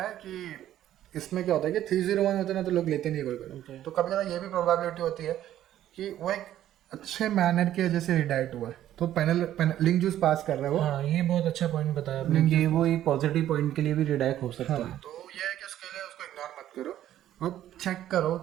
कि इसमें क्या होता है कि 301 होते हैं ना तो लोग लेते नहीं कोई। तो कभी ज़्यादा ये भी प्रोबेबिलिटी होती है कि वो एक अच्छे मैनर की वजह से रिडायरेक्ट हुआ है, तो पैनल लिंक जूस पास कर रहे हो। हाँ, ये बहुत अच्छा पॉइंट बताया आपने कि वो एक पॉजिटिव पॉइंट के लिए भी रिडायरेक्ट हो सकता है। तो ये है कि उसके लिए उसको इग्नोर मत करो और चेक करो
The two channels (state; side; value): quieter; left; 12.2 dB